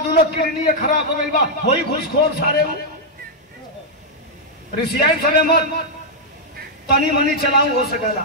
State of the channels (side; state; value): both; normal; correlation -0.04